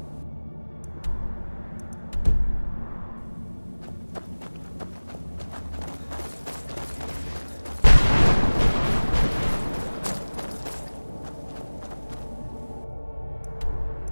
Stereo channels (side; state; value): both; inverted; correlation -1.00